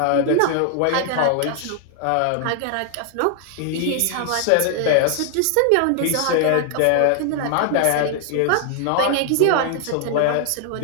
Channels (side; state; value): both; different; correlation 0.00